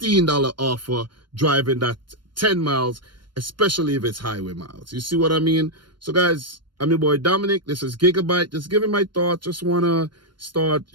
offer driving that 10 miles, especially if it's highway miles. You see what I mean? So guys, I'm your boy Dominic. This is Gigabyte. Just giving my thoughts. Just want to start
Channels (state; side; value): late; left; 0.72 ms